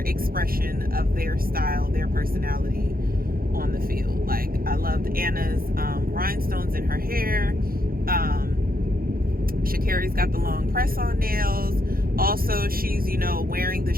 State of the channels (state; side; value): late; left; 0.42 ms